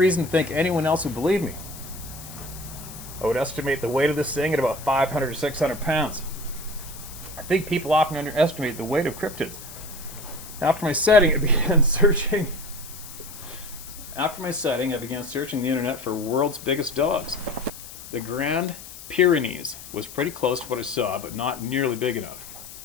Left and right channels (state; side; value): noise; left; hiss, 15 dB below the sound